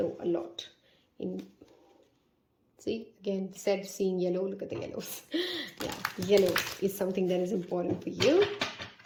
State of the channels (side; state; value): both; identical; correlation 1.00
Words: a lot in. See, again, said seeing yellow. Look at the yellows. Yeah, yellow is something that is important for you.